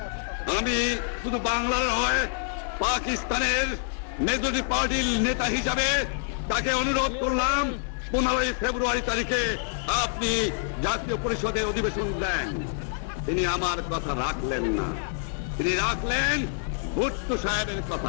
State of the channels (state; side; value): silent; right; 56 dB below the other